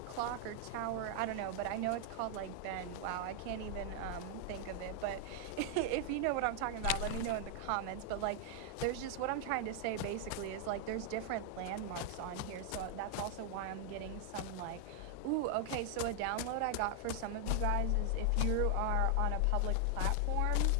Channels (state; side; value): different; both; correlation 0.00